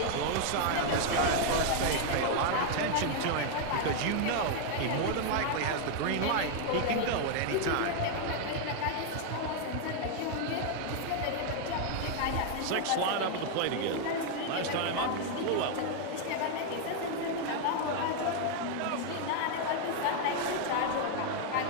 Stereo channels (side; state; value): both; different; correlation 0.00